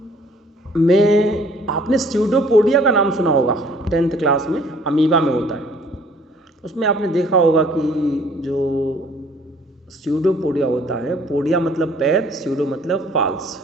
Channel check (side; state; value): both; normal; correlation 0.57